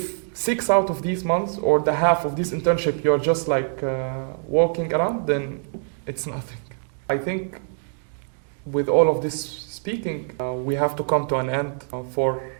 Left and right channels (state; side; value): silent; left; 59 dB below the other